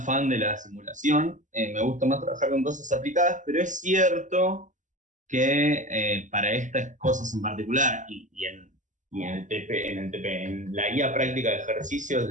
fan de la simulación, me gusta más trabajar con cosas aplicadas, pero es cierto que para estas cosas en particular y en la guía práctica de ejercicios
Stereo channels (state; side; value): late; left; 0.37 ms